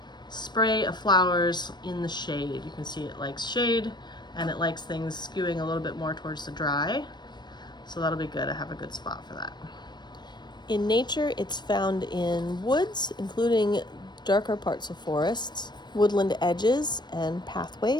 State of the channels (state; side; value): late; right; 0.21 ms